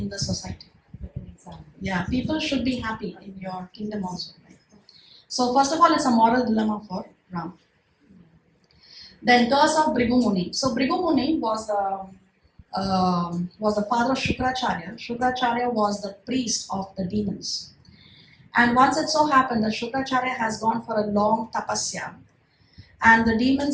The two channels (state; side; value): identical; both; correlation 1.00